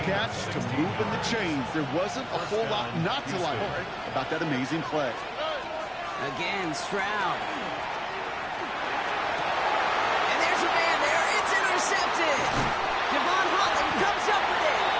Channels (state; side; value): identical; both; correlation 1.00